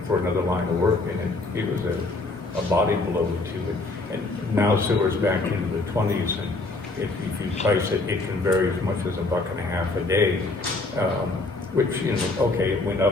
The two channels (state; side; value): quieter; right; 3.2 dB